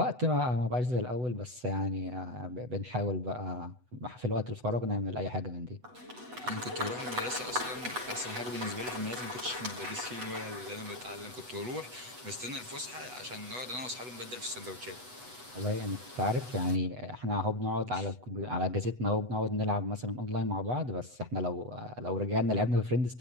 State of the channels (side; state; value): left; late; 8.1 ms